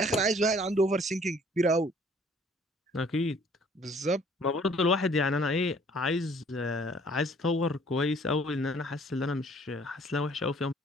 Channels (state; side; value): normal; both; correlation 0.57